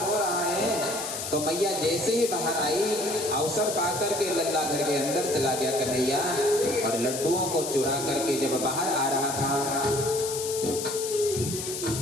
रो रहा है, तो मैया जैसे ही बाहर आई अवसर पाकर के लल्ला घर के अंदर चला गया कन्हैया और लड्डुओं को चुरा करके जब बाहर आ रहा था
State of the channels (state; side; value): noise; left; hiss, 5 dB below the sound